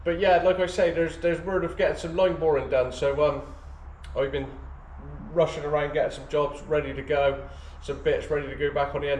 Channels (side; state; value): both; identical; correlation 1.00